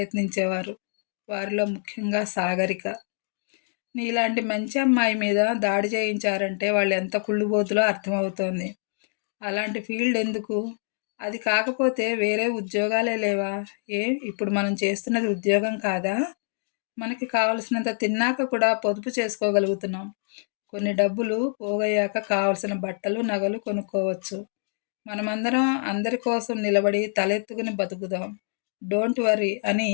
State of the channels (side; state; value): right; silent; 61 dB below the other